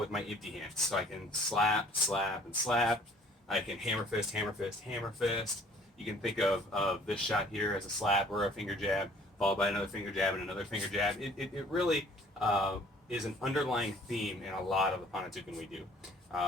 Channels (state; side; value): normal; both; correlation 0.55